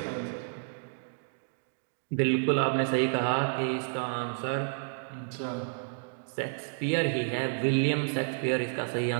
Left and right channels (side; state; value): left; silent; digital silence